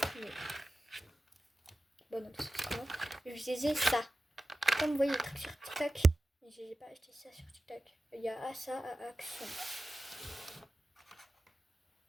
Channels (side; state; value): both; normal; correlation 0.94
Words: mais. Bon, non, parce que c'est moi. Je disais ça. Comme vous voyez le truc sur TikTok, mais je n'ai pas acheté ça sur TikTok. Il y a ça à Action.